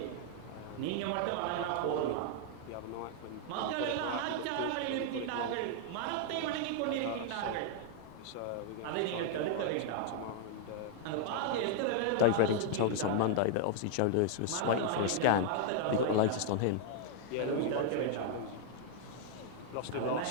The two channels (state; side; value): different; both; correlation 0.00